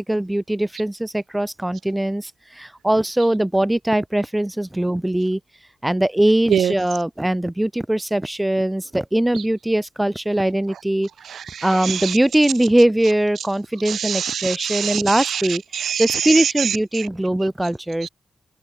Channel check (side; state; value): both; normal; correlation 0.98